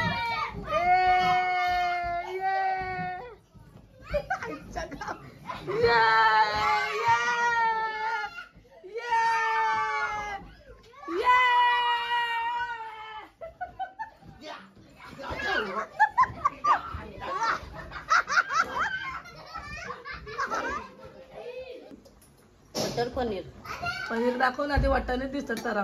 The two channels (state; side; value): identical; both; correlation 1.00